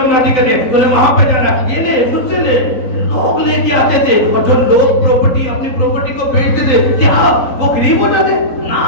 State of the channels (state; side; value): late; right; 3.9 ms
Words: मनाती करनी है, तूने वहां पे जाना है, ये ले मुझसे ले। लोग लेके आते थे और जो लोग अपनी प्रॉपर्टी को बेचते थे, क्या वो गरीब हो जाते? ना,